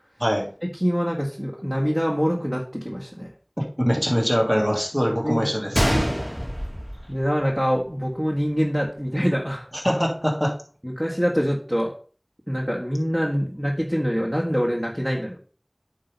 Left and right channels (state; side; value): identical; both; correlation 1.00